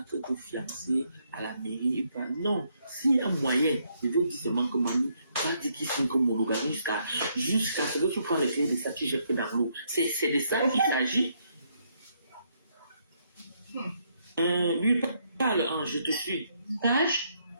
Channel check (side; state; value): both; inverted; correlation -0.73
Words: que te fiancer à la mairie. Non, s'il y a un moyen, je veux dire seulement que mamie, va dire qu'il signe comme monogamie jusqu'à ce que tu prends les clés de ça, tu jettes dans l'eau. C'est de ça qu'il s'agit. Lui parle, je te suis.